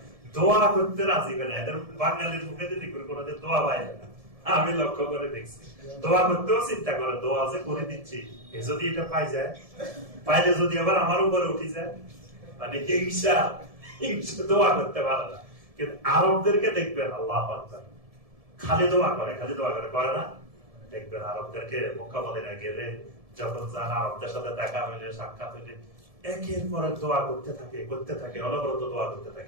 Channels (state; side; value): late; left; 1.7 ms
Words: দোয়া করতে রাজি না। এদের বাঙালির মুখে যদি কোনোদিন দোয়া পায় না, আমি লক্ষ্য করে দেখছি। দোয়া করতেও চিন্তা করে, দোয়া যে করে দিচ্ছি যদি এটা পাই যায়, পাইলে যদি আবার আমার উপরে উঠে যায়, মানে হিংসা, হিংসা দোয়া করতে পারে না। কিন্তু আরবদেরকে দেখবেন আল্লাহু আকবার, খালি দোয়া করে, খালি দোয়া করে, করে না? দেখবেন আরবদেরকে মক্কা মদিনা গেলে যখন যান, আরবদের সাথে দেখা হইলে, সাক্ষাৎ হইলে একের পর এক দোয়া করতে থাকে, অনবরত দোয়া করতে